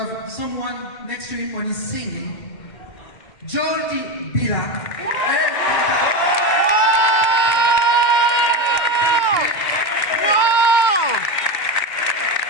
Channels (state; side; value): late; right; 2.1 ms